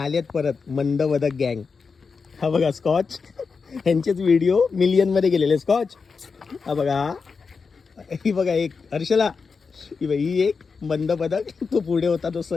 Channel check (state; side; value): quieter; right; 5.0 dB